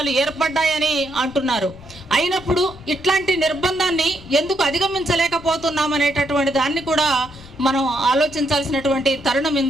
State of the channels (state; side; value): noise; left; rumble, 20 dB below the sound